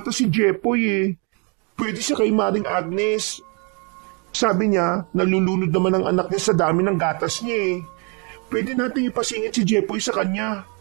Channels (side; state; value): left; quieter; 34.9 dB